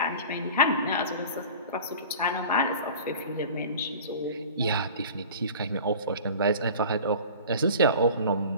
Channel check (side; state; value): both; inverted; correlation -0.40